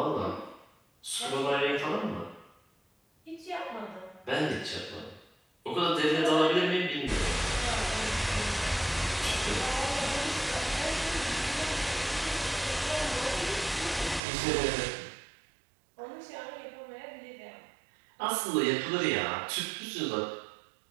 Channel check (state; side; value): drops out; left; at 14.2 s